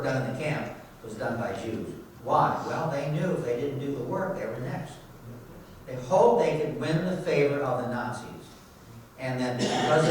done in the camp was done by Jews. Why? Well, they knew if they didn't do the work, they were next. They hoped they could win the favor of the Nazis. And then because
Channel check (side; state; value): both; identical; correlation 1.00